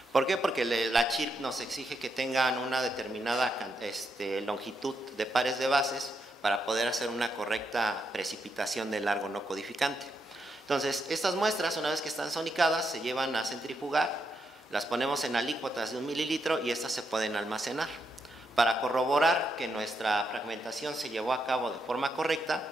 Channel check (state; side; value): normal; both; correlation 0.81